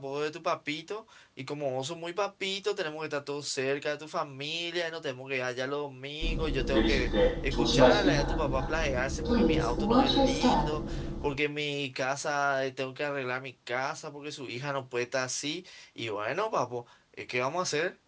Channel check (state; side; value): identical; both; correlation 1.00